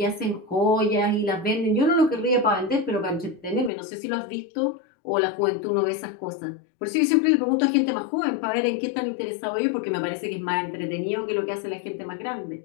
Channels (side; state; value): right; drops out; at 3.7 s